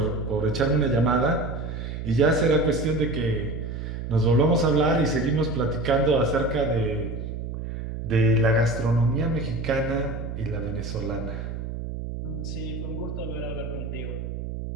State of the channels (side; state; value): right; noise; hum, 6 dB below the sound